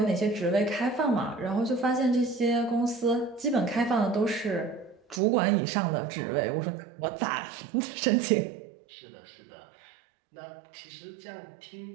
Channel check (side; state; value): left; drops out; at 5.2 s